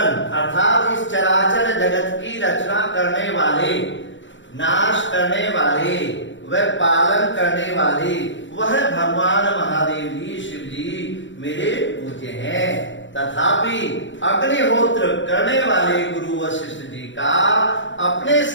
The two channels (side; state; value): right; late; 0.55 ms